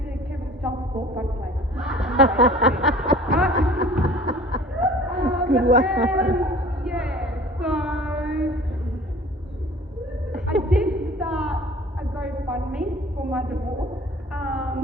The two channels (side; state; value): both; normal; correlation 0.46